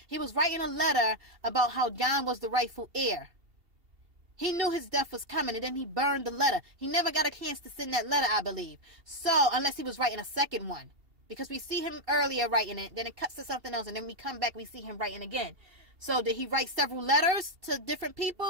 He was writing a letter about how Jon was the rightful heir. He knew his death was coming, and then he burned the letter. He never got a chance to send that letter, I believe. So, unless he was writing a second one. Because we see him earlier writing it, then it cuts to something else, and then we come back, we see him writing again. So, did he write several letters to different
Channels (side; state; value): left; late; 2.8 ms